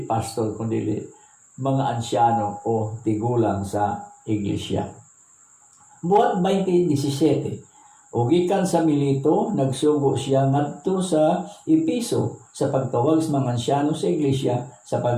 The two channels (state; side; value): identical; both; correlation 1.00